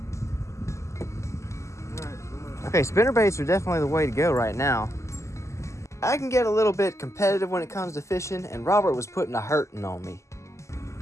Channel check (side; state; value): right; late; 0.14 ms